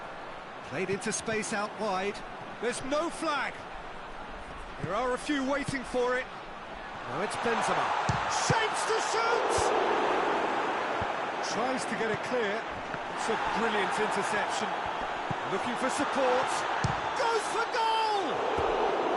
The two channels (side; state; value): both; identical; correlation 1.00